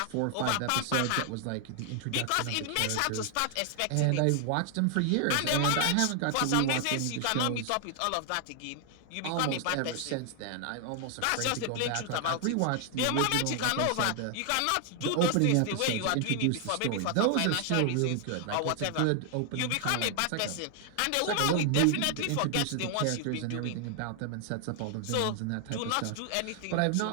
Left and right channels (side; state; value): both; different; correlation 0.00